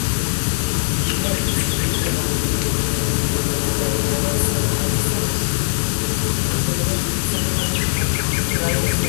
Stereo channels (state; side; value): silent; right; digital silence